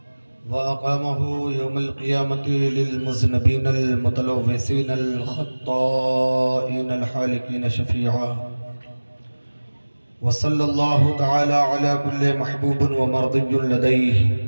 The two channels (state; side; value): inverted; both; correlation -1.00